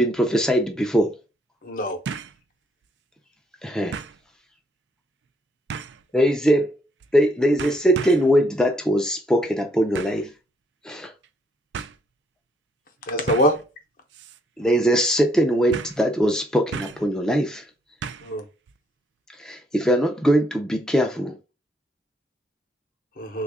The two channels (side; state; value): both; normal; correlation 0.71